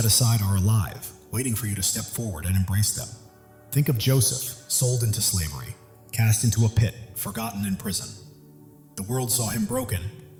aside are alive, waiting for you to step forward and embrace them. Think of Joseph, sold into slavery, cast into a pit, forgotten in prison. The world saw him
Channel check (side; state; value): both; identical; correlation 1.00